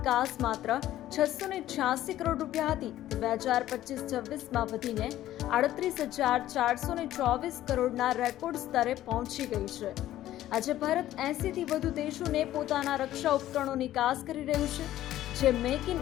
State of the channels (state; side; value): quieter; right; 13.6 dB